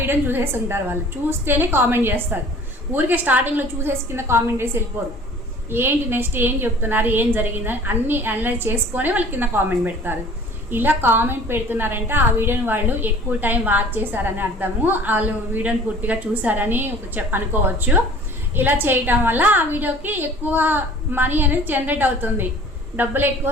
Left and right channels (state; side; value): normal; both; correlation 0.48